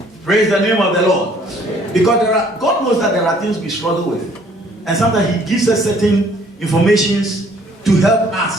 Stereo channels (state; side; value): normal; both; correlation 0.59